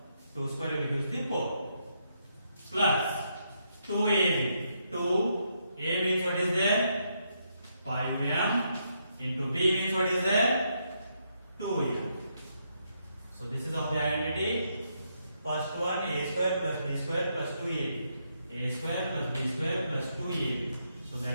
2 square will give the 4. Plus 2ab. 2 a means what is there? 5m into b means what is there? 2m. So this is of the identity. First one, a square plus b square plus 2ab. A square plus b square plus 2ab. So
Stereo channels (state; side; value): inverted; both; correlation -0.78